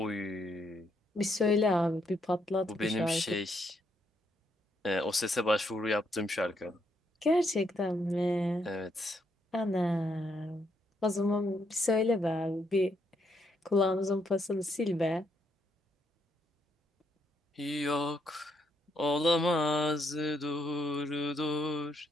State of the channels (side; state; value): both; normal; correlation 0.75